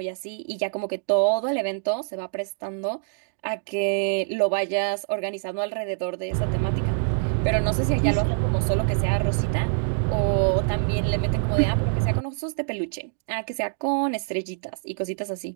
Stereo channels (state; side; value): silent; left; digital silence